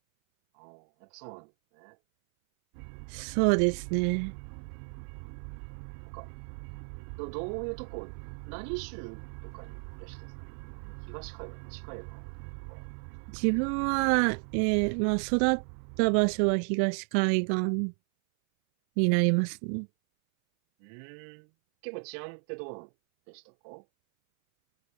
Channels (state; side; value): silent; left; 57 dB below the other